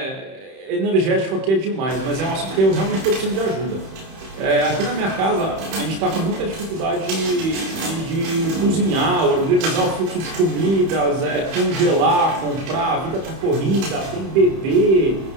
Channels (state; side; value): late; left; 31 ms